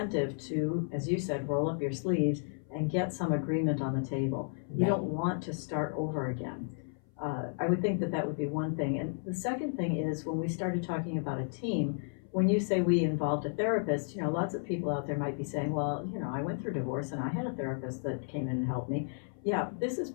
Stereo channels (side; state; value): right; silent; 56 dB below the other